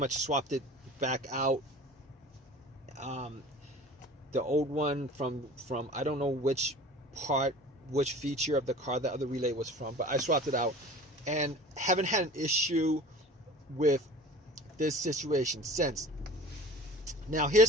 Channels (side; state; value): both; normal; correlation 0.42